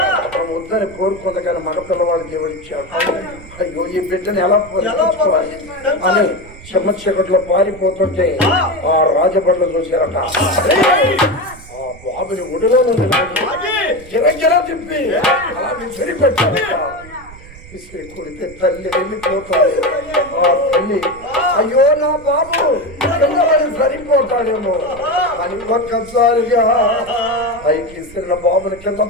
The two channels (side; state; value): right; noise; rumble, 19 dB below the sound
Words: వద్దని కోరుకుంది కానీ మగ పిల్లవాడు దేవుడు ఇచ్చాడు. అయ్యో ఈ బిడ్డను ఎలా పోషించుకోవాలి అని చెమ్మ చీకట్లో పారిపోతుంటే ఆ రాజబడ్లు చూశారట. ఆ బాబుని ఒడిలో గిరగిర తిప్పి అలా సరిపెట్టారట. విసిరి కొడితే తల్లి వెళ్ళిపోతుంది. ఆ తల్లి అయ్యో నా బాబు పిల్లవాడు సరిపోతాడేమో అని ఒక్కసారిగా పైకి ఇస్తున్న బాబుని కింద